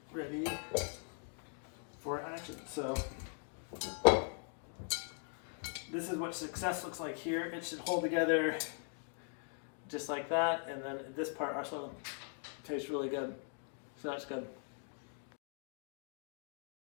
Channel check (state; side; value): silent; right; 51 dB below the other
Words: ready for action. So this is what success looks like here. It should hold together just like that, and then this part also tastes really good. So that's good.